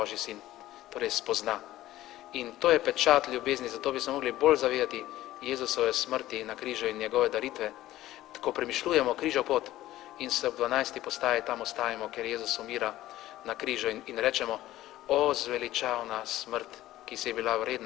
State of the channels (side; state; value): right; quieter; 15.1 dB